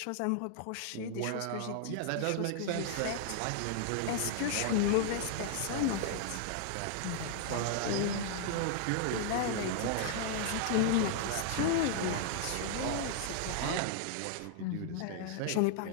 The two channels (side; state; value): both; different; correlation -0.01